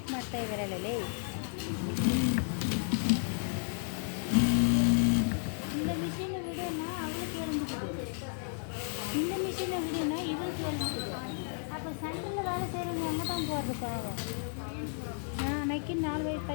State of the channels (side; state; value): right; silent; 56 dB below the other